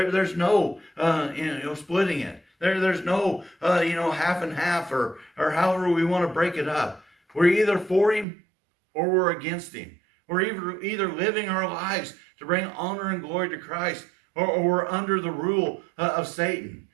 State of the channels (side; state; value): left; drops out; at 8.2 s